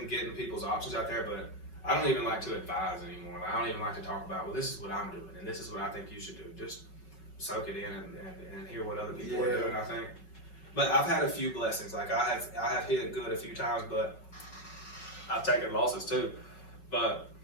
getting people's options out there, but I don't even like to advise anymore. I don't even like to talk about, well, this is what I'm doing, and this is what I think you should do. Just soak it in and hear what other people are doing, I think. But I've had a few blessings. Like, I have hit it good a few times, but I've taken losses too. But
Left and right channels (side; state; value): right; late; 5.4 ms